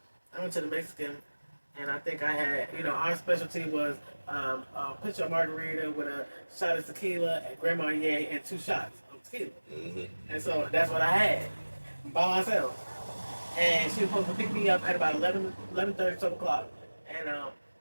I went to the Mexican, and I think I had, our specialty was a pitcher of margarita with a shot of tequila at Grand Marnier and 2 shots of tequila. Mm-hmm. And so that's what I had by myself. And she was supposed to pick me up at about 11:30, 12 o'clock. And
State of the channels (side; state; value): both; inverted; correlation -1.00